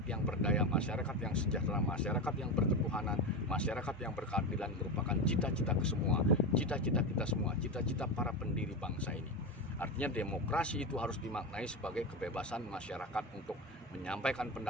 yang berdaya, masyarakat yang sejahtera, masyarakat yang berketuhanan, masyarakat yang berkeadilan merupakan cita-cita kita semua, cita-cita para pendiri bangsa ini. Artinya demokrasi itu harus dimaknai sebagai kebebasan masyarakat untuk menyampaikan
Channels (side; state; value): both; normal; correlation 0.18